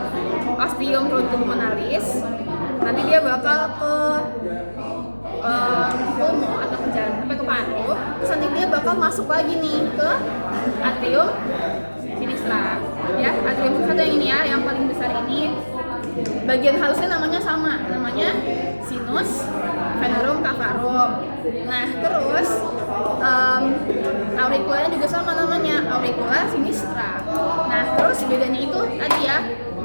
ostium truncus pulmonalis. Nanti dia bakal ke pulmo atau ke jantung sampai ke paru. Terus nanti dia bakal masuk lagi nih ke atrium sinistra. Ya, atrium sinistra yang ini ya, yang paling besar ini. Bagian halusnya namanya sinus venerum cavarum. Nah, terus auriculanya juga sama namanya, auricula sinistra. Nah, terus bedanya itu tadi ya,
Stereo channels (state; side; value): inverted; both; correlation -1.00